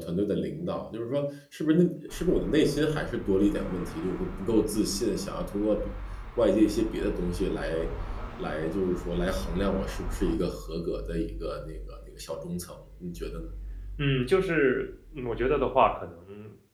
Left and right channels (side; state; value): both; identical; correlation 1.00